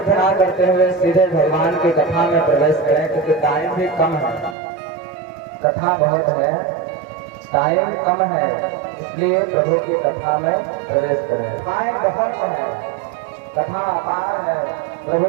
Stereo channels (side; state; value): left; drops out; at 4.5 s